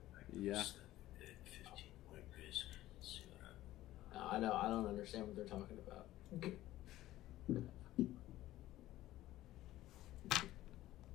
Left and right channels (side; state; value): right; quieter; 15.3 dB